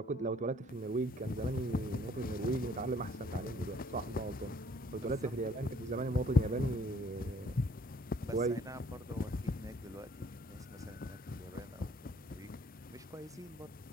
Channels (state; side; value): normal; both; correlation 0.60